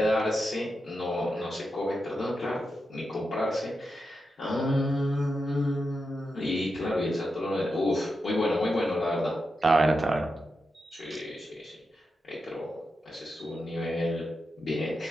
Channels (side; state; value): both; normal; correlation 0.88